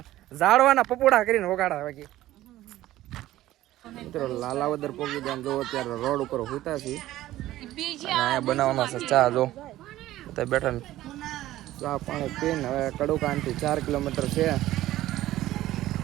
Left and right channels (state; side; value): quieter; left; 15.0 dB